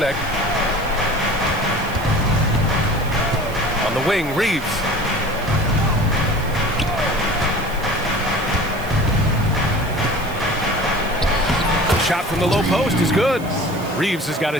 On the wing, Reeves. The shot from the low post is good. Reeves has got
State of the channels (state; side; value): noise; right; hiss, 18 dB below the sound